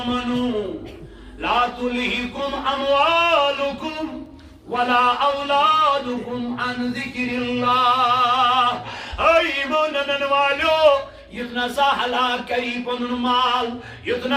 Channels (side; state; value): both; identical; correlation 1.00